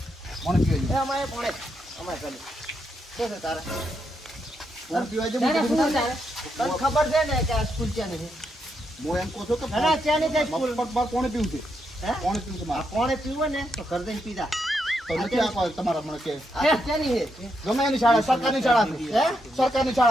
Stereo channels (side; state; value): both; normal; correlation 0.81